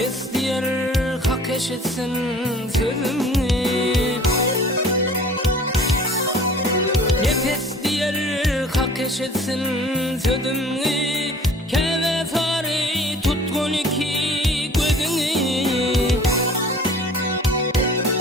diyer hak eşitsin sözümü Nefes diyer hak eşitsin sözümü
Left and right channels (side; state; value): both; normal; correlation 0.48